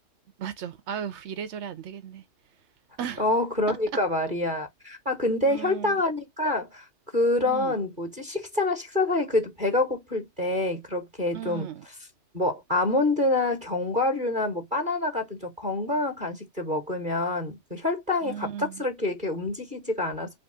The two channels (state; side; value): late; left; 2.3 ms